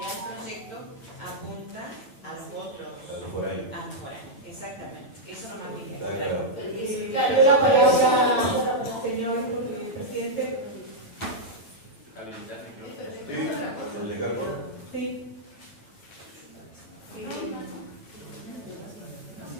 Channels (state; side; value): late; right; 8.9 ms